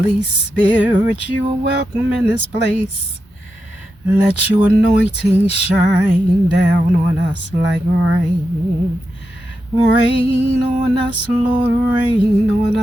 Spirit, you are welcome in this place. Let your anointing shine down on us like rain. Rain on us, Lord, rain on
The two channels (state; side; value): normal; both; correlation 0.88